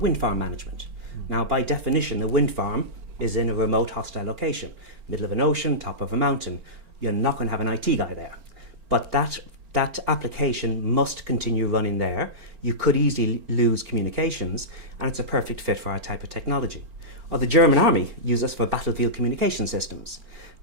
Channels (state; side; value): late; left; 4.4 ms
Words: farm management. Now by definition, a wind farm is in a remote hostile location, middle of an ocean, top of a mountain. You're not going to have an IT guy there. But that application must continue running there. You could easily lose communications, and it's a perfect fit for our type of technology. Or the German army uses us for battlefield communication systems.